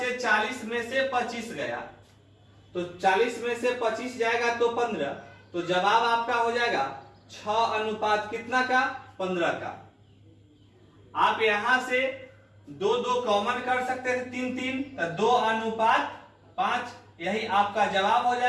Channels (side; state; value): both; identical; correlation 1.00